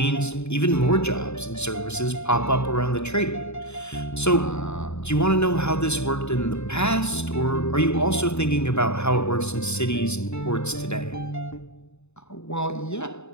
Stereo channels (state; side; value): late; right; 0.81 ms